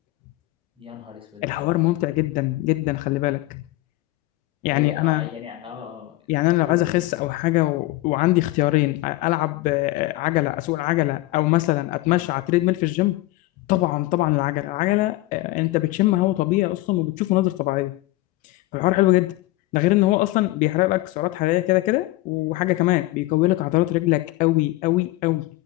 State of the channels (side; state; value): right; quieter; 18.7 dB